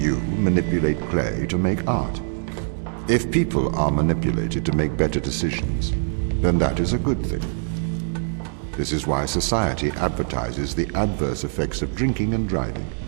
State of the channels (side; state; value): left; silent; digital silence